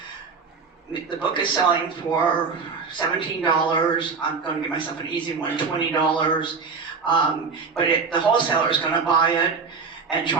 the book is selling for $17. I'm going to give myself an easy one, $20. But the wholesaler is going to buy it and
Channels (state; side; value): quieter; left; 5.0 dB